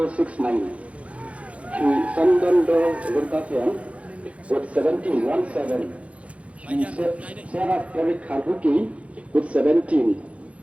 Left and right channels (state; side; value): late; left; 0.063 ms